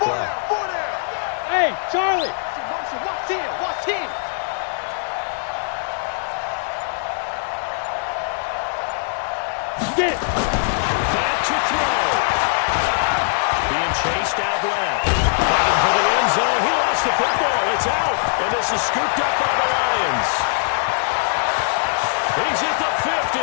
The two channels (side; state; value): right; silent; 58 dB below the other